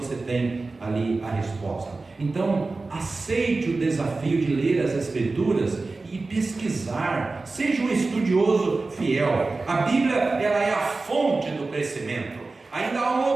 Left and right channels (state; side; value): quieter; left; 3.6 dB